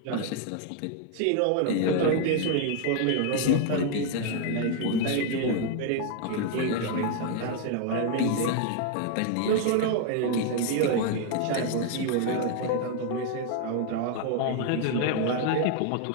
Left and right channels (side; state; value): both; different; correlation 0.00